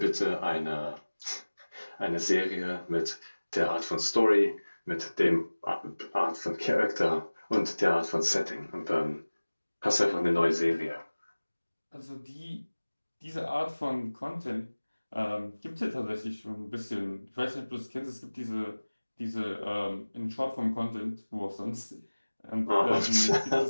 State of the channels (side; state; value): both; inverted; correlation -1.00